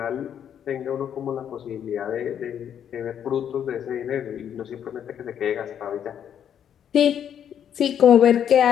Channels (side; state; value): right; quieter; 9.1 dB